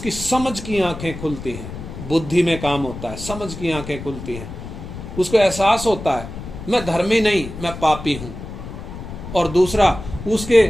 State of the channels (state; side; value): noise; left; rumble, 10 dB below the sound